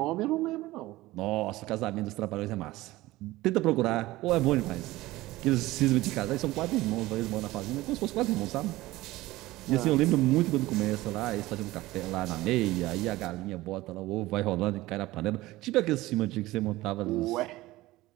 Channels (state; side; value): quieter; left; 18.1 dB